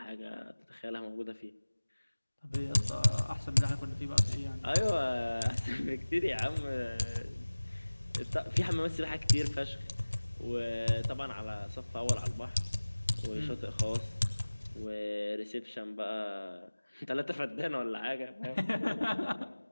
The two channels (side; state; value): both; inverted; correlation -1.00